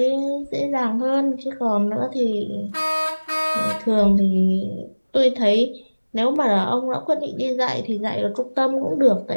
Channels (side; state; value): both; inverted; correlation -1.00